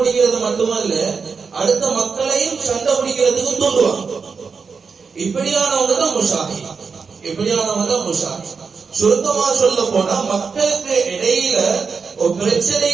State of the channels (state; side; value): quieter; left; 5.3 dB